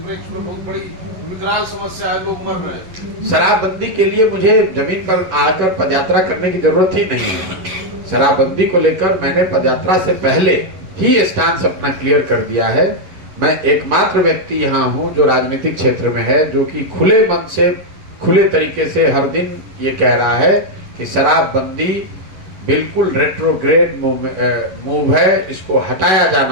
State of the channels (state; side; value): late; left; 10 ms